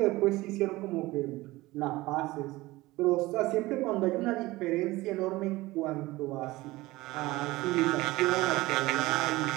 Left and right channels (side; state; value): left; quieter; 19.4 dB